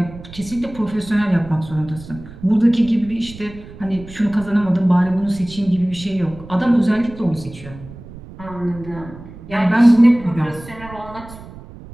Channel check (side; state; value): right; noise; rumble, 16 dB below the sound